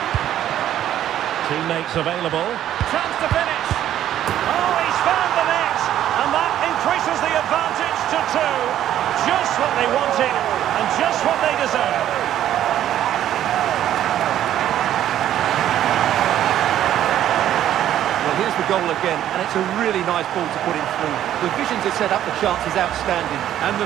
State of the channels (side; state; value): left; quieter; 11.6 dB